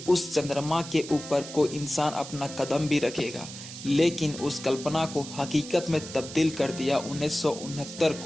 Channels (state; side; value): noise; right; hiss, 12 dB below the sound